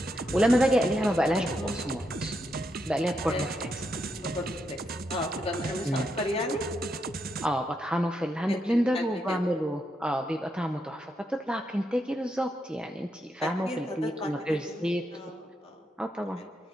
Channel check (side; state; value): both; normal; correlation 0.81